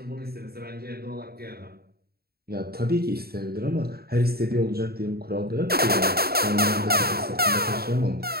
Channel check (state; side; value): late; left; 0.45 ms